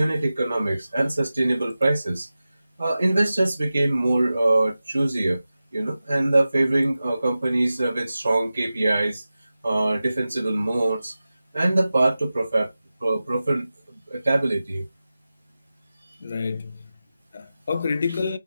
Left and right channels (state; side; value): inverted; both; correlation -0.95